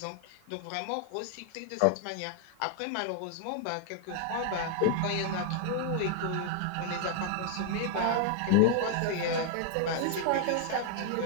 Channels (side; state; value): both; different; correlation 0.00